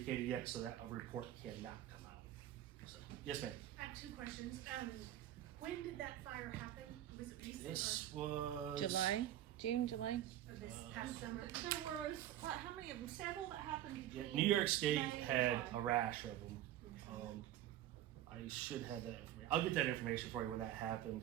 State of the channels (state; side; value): quieter; left; 12.6 dB